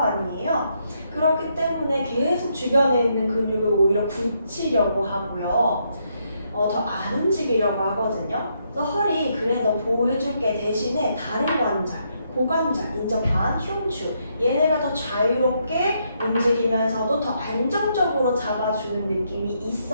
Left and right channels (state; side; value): inverted; both; correlation -0.76